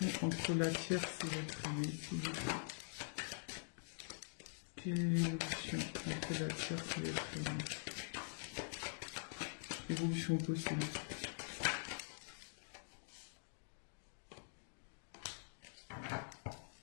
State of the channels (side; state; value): right; silent; digital silence